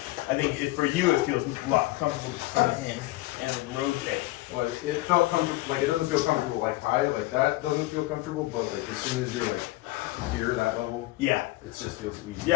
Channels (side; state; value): right; quieter; 18.9 dB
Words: I think for you it feels a lot comfortable to come in and then rotate. Well, it felt comfortable. Like it doesn't feel comfortable like high. Like that doesn't feel comfortable. But like as soon as you're like here, that level, Yeah. it just feels easy.